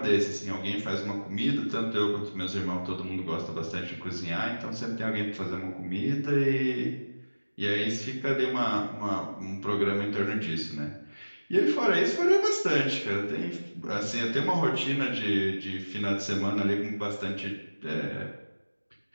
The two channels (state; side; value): inverted; both; correlation -1.00